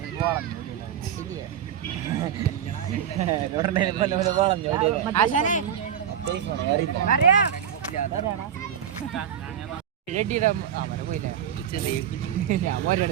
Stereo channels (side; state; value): left; quieter; 9.2 dB